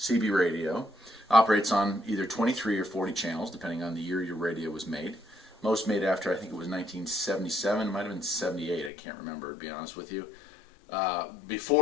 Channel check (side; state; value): right; drops out; at 8.9 s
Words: radio, operates on either 23 or 40 channels, depending on the year your radio was made. Most made after, I think it was 1977, it might have been 78, I can't remember, to be honest with you.